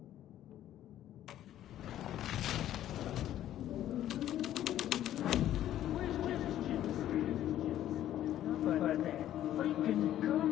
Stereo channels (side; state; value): right; quieter; 12.2 dB